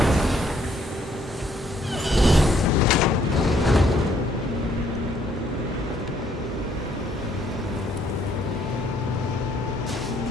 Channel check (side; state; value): both; normal; correlation 0.67